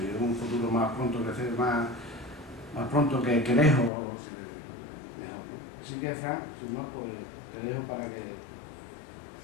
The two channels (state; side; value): drops out; right; at 3.9 s